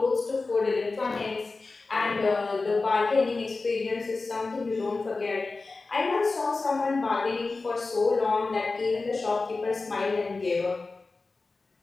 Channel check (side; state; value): right; quieter; 3.7 dB